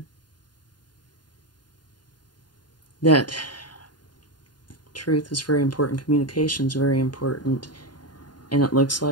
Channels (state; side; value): late; right; 0.70 ms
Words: That truth is very important, communication is very important, and it looks